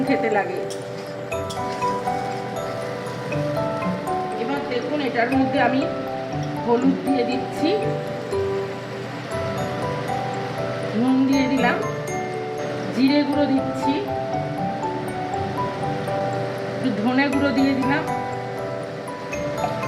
খেতে লাগে। এবার দেখুন, এটার মধ্যে আমি হলুদ দিয়ে দিচ্ছি, নুন দিয়ে দিলাম, জিরে গুঁড়ো দিচ্ছি, একটু ধনে গুঁড়ো দিয়ে দিলাম,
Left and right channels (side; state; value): both; identical; correlation 1.00